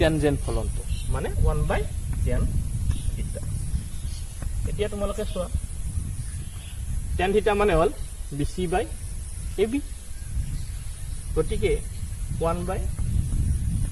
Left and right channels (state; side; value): identical; both; correlation 1.00